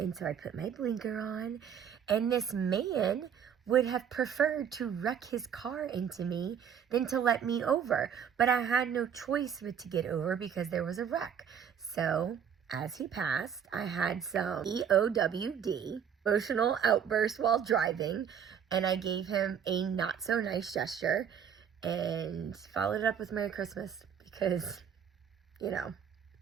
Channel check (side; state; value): left; quieter; 8.0 dB